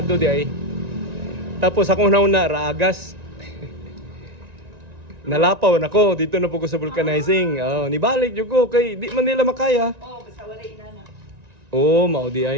di ay. Tapos akong nauna raagas. Nalapaw na ko dito na po ko sa vulcanizing. Nibalik jud ko kay di man nila makaya. Basta wala inana. Mao di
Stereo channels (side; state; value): left; late; 1.9 ms